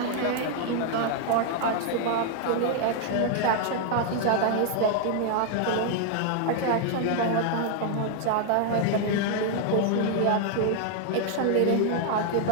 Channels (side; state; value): both; different; correlation 0.00